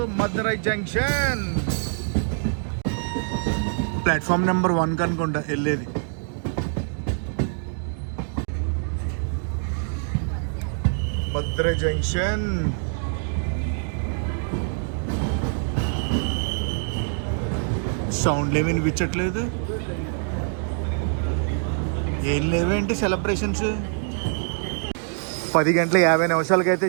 Madurai junction. Platform number 1 కనుకుంటా వెళ్ళేది. మదురై జంక్షన్. సౌండ్లు ఏమి వినిపించట్లేదు. ఏం లేవేంటి సెలబ్రేషన్స్. 10:50 అయితే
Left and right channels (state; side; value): silent; left; 56 dB below the other